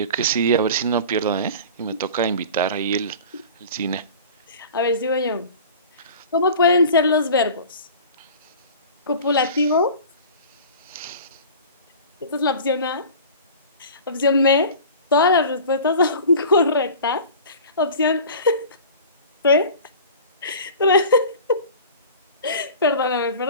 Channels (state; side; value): inverted; both; correlation -0.40